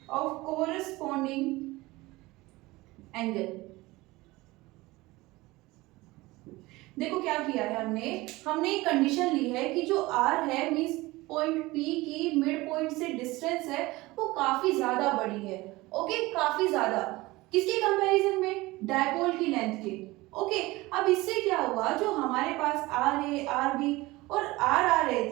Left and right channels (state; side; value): quieter; left; 20.5 dB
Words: ऑफ कोरस्पॉन्डिंग एंगल। देखो क्या किया है हमने एक कंडीशन ली है कि जो r है मींस पॉइंट P की मिड पॉइंट से डिस्टेंस है वो काफी ज्यादा बड़ी है। ओके, काफी ज्यादा, किसके कंपैरिजन में, डायपोल की लेंथ के। ओके, अब इससे क्या हुआ, जो हमारे पास RA, RB और R आ रहे